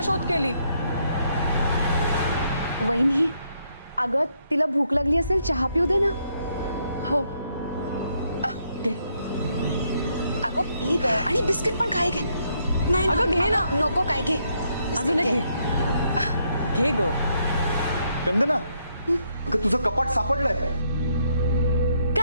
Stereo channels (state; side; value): inverted; both; correlation -0.74